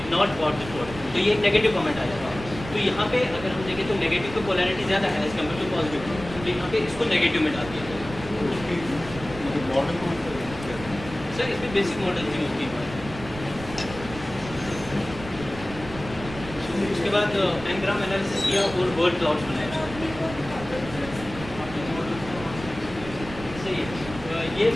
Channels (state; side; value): noise; right; rumble, 13 dB below the sound